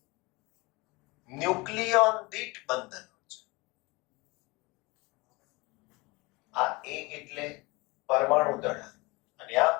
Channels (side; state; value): right; quieter; 24.8 dB